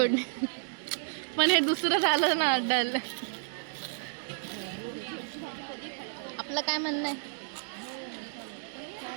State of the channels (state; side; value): silent; left; digital silence